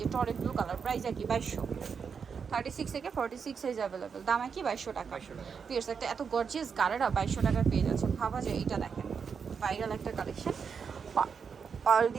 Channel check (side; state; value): left; quieter; 6.2 dB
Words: টরে ব্লু কালার। প্রাইস একই 2200। 36 থেকে 46 সাইজ অ্যাভেলেবেল, দাম একই 2200 টাকা। 2200 টাকা। পিয়ার্স একটা এত গর্জিয়াস গারারা 2200 টাকার পেয়ে যাচ্ছে, ভাবা যায়। এইটা দেখেন ভাইরাল একটা কালেকশন, পার্ল